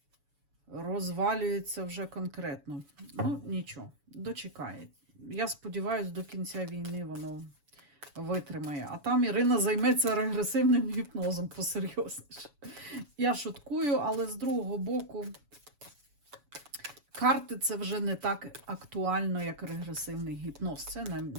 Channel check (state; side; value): late; left; 7.0 ms